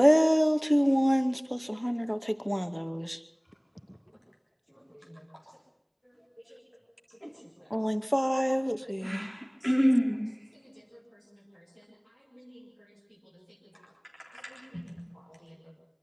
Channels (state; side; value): identical; both; correlation 1.00